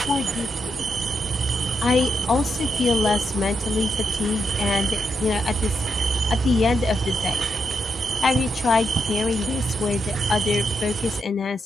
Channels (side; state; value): both; normal; correlation 0.82